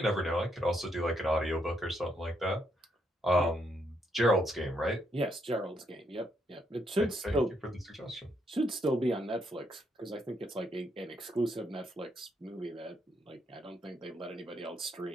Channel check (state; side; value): normal; both; correlation 0.76